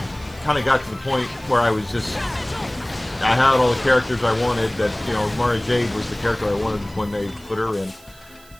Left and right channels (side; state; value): right; noise; hiss, 25 dB below the sound